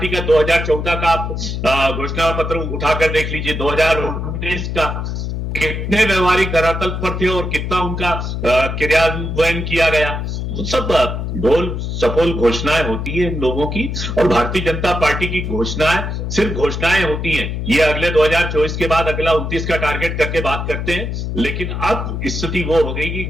का 2014 का आप घोषणा पत्र उठाकर देख लीजिए, 2019 का कितने व्यवहारिक धरातल पर थे और कितना उनका क्रियान्वयन किया गया। वो सब ढोल सफोल घोषणाएं होती है इन लोगों की, और भारतीय जनता पार्टी की घोषणाएं सिर्फ घोषणाएं होती हैं। ये अगले 2024 के बाद अगला 29 का टारगेट करके बात करते हैं, लेकिन अब स्थिति वो हो गई कि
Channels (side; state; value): left; noise; hum, 3 dB below the sound